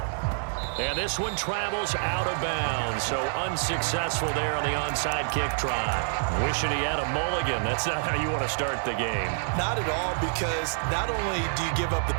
And this one travels out of bounds, so unsuccessful there on the onside kick try. Wishing he had a mulligan. That's not how you want to start the game. Not at all, because not only do you give up the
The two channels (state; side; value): silent; left; 57 dB below the other